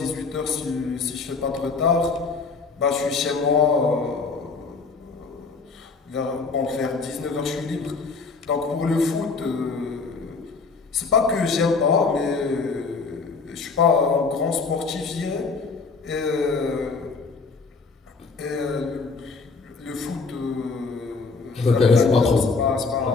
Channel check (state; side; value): quieter; right; 4.5 dB